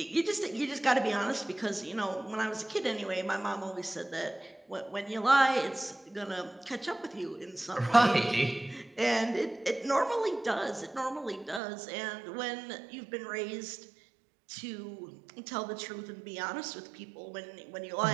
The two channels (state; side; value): drops out; left; at 11.6 s